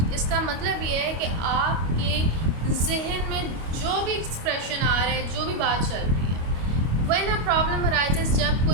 इसका मतलब ये है कि आपके जहन में जो भी एक्सप्रेशन आ रहा है, जो भी बात चल रही है, When a problem arises, जब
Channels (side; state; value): left; late; 25 ms